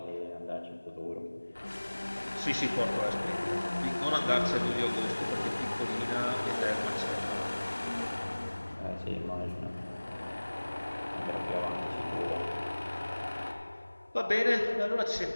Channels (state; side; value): inverted; both; correlation -1.00